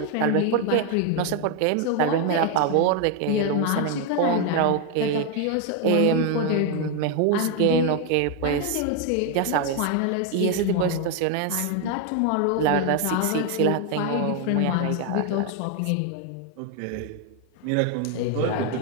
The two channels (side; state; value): both; different; correlation 0.01